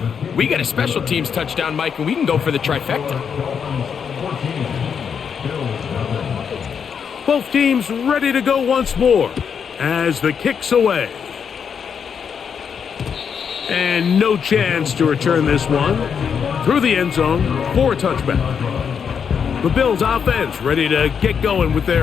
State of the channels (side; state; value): right; quieter; 7.0 dB